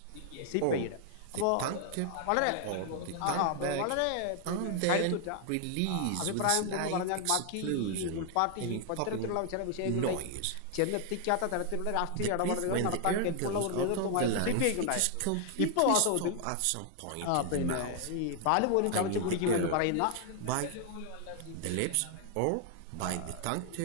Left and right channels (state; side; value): different; both; correlation 0.00